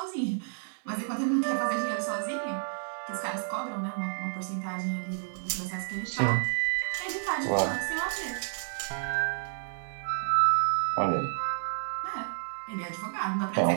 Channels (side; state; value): left; silent; digital silence